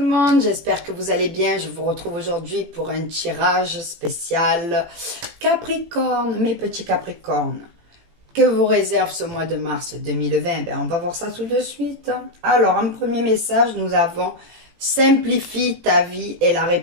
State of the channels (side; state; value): left; late; 18 ms